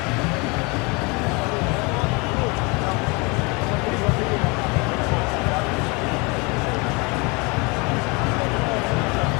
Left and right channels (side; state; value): right; quieter; 28.4 dB